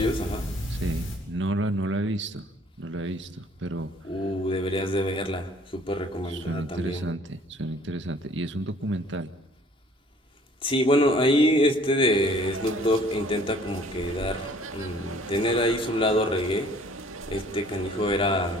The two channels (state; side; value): normal; both; correlation 0.56